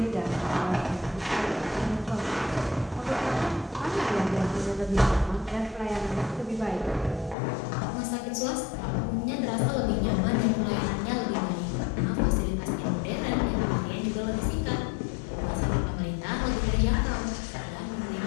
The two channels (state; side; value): drops out; right; at 7.4 s